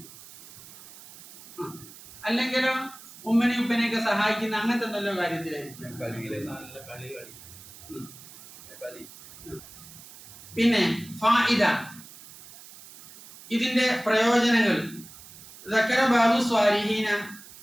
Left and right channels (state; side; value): noise; right; hiss, 18 dB below the sound